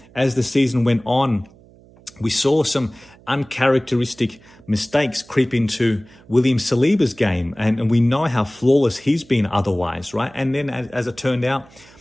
as the season went on, we saw some uncharacteristic mistakes creep into William Saliba's game, and we know how flawless he's been otherwise, right? And then as it turned out,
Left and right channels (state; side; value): noise; right; hum, 26 dB below the sound